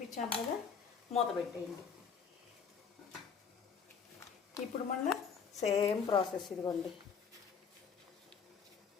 కదా, మూత పెట్టేయండి. ఇప్పుడు మళ్ళీ సేమ్ ప్రాసెస్. ఇదిగోండి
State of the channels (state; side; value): quieter; right; 6.3 dB